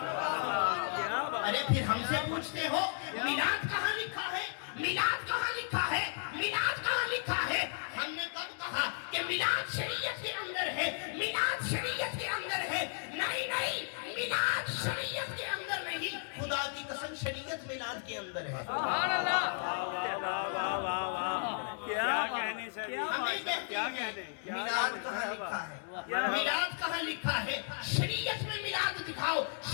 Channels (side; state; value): right; silent; digital silence